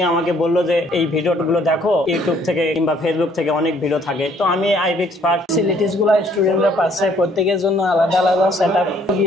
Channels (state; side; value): normal; both; correlation 0.63